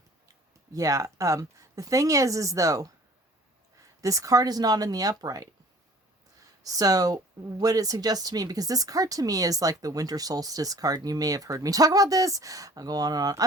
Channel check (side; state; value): both; normal; correlation 0.50